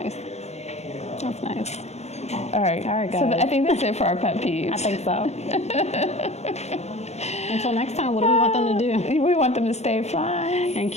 That's nice. All right. All right, So guys. I think that's it for our pet peeves. I think so. Until next time, what do we want them to do? We want them to stay fly. And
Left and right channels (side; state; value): right; late; 0.32 ms